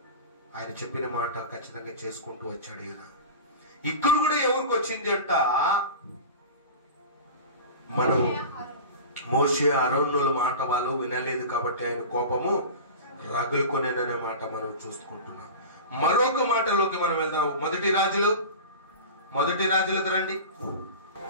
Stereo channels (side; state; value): both; inverted; correlation -0.32